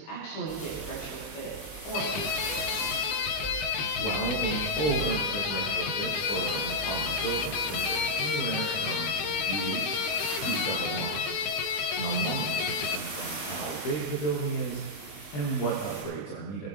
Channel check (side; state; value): right; late; 20 ms